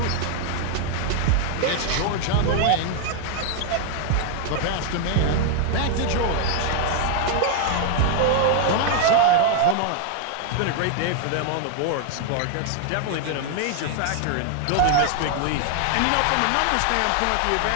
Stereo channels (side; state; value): both; different; correlation 0.00